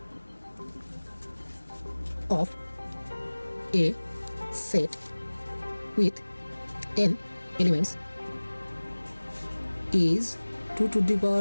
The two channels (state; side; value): inverted; both; correlation -1.00